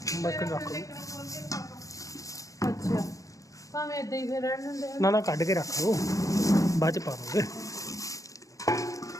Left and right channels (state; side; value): late; right; 0.16 ms